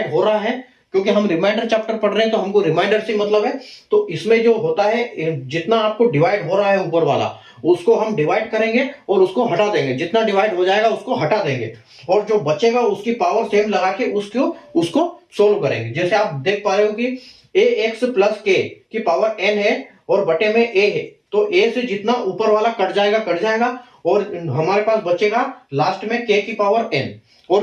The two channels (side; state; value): both; identical; correlation 1.00